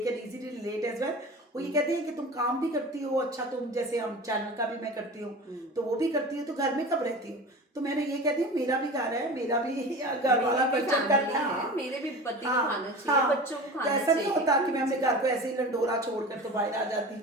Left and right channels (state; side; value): normal; both; correlation 0.34